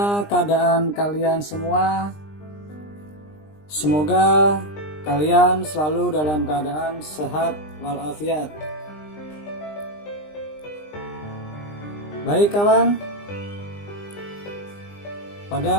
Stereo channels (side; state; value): right; late; 20 ms